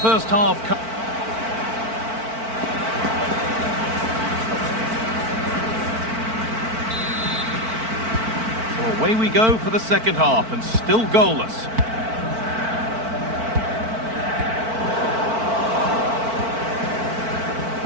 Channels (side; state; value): left; late; 4.5 ms